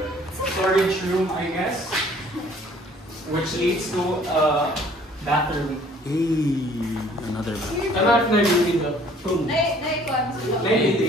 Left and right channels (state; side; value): normal; both; correlation 0.56